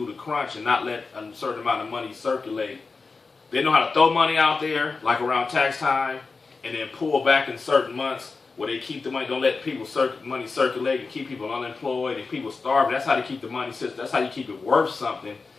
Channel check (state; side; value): quieter; right; 4.3 dB